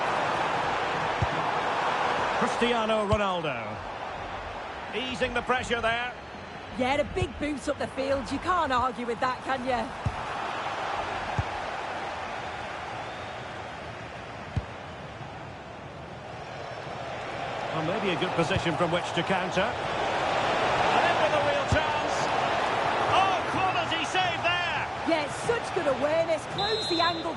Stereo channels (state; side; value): identical; both; correlation 1.00